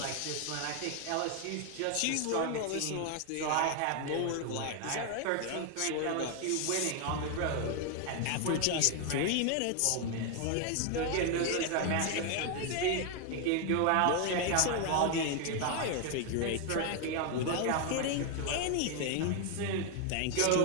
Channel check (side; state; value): both; different; correlation 0.01